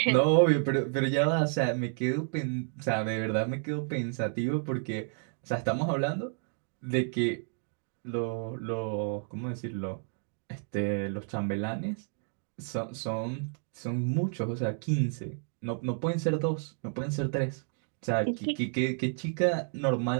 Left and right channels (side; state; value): left; silent; 57 dB below the other